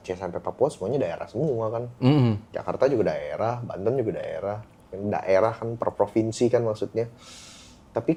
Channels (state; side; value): identical; both; correlation 1.00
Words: sampai Papua semuanya daerah semua kan. Jakarta juga daerah, Banten juga daerah. Daerah kan per provinsi kan maksudnya. Tapi